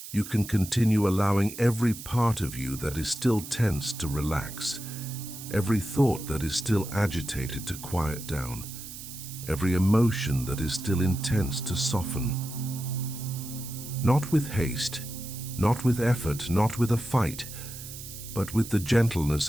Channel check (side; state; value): right; noise; hiss, 12 dB below the sound